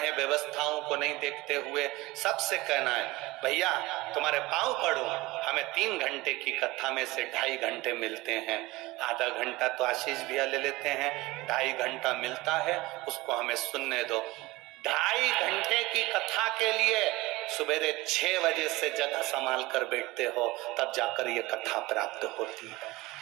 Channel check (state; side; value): quieter; left; 20.6 dB